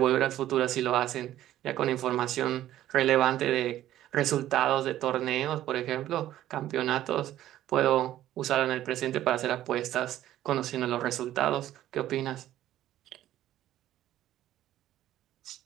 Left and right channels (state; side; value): quieter; left; 13.2 dB